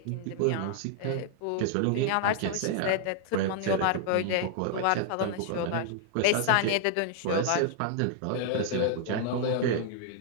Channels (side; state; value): both; different; correlation -0.01